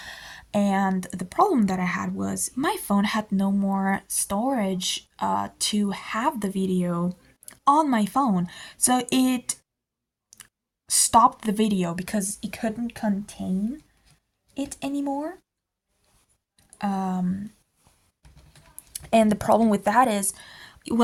And the problem that I had was my phone had no more storage to have the video on my phone. So it stopped the video because it couldn't contain it anymore. And the problem with that is,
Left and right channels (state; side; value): identical; both; correlation 1.00